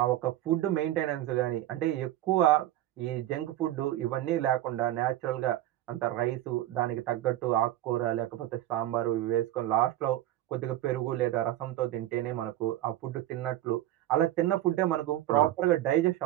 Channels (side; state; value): left; quieter; 14.1 dB